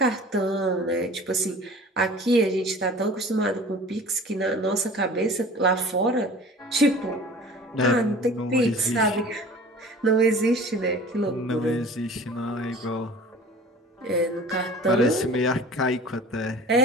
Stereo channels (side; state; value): both; normal; correlation 0.42